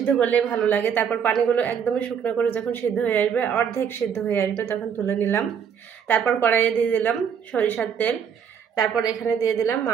করলে ভালো লাগে। তারপর পানিগুলো একদমই শুকনো করে যখন সিদ্ধ হয়ে আসবে, অর্ধেক সিদ্ধ হয়ে আসবে, তখন তুলে নিলাম। তারপর কড়াইয়ে দিয়ে দিলাম সরিষার তেল। তারপর এখানে দিয়ে দিলাম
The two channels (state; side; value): quieter; left; 7.6 dB